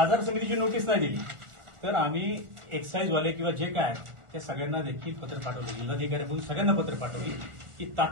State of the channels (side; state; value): left; late; 1.4 ms